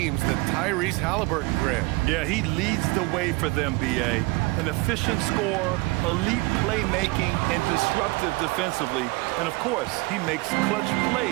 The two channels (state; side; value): quieter; left; 24.3 dB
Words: than Tyrese Halliburton, Grant. Yeah, he leads the way for them, B.A. An efficient scorer, elite playmaking, and disruptive defensively. And, of course, he makes clutch